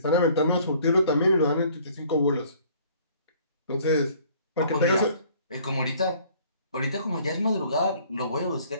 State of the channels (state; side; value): inverted; both; correlation -0.56